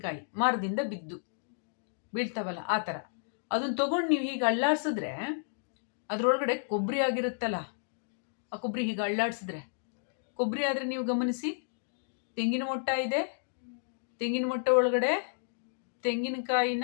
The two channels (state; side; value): silent; right; digital silence